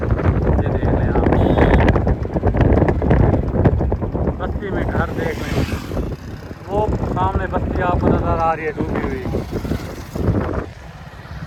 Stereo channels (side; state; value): both; identical; correlation 1.00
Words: ये देख लें आप, बस्ती में घर देख लें, वो सामने बस्ती आपको नज़र आ रही है डूबी हुई।